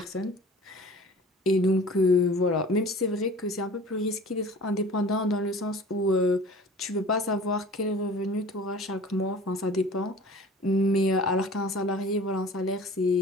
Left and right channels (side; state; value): both; normal; correlation 0.44